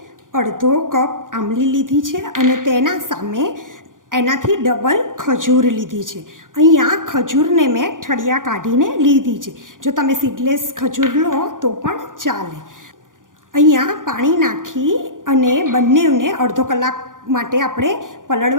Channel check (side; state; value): left; late; 0.89 ms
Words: અડધો કપ આંબલી લીધી છે અને તેના સામે એનાથી ડબલ ખજૂર લીધી છે. અહીંયા ખજૂરને મેં ઠળિયા કાઢીને લીધી છે. જો તમે સીડલેસ ખજૂર લો તો પણ ચાલે. અહીંયા પાણી નાખી અને બંનેને અડધો કલાક માટે આપણે